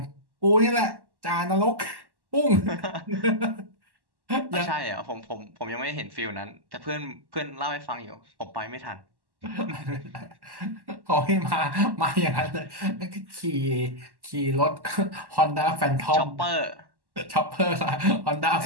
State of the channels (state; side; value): late; left; 1.1 ms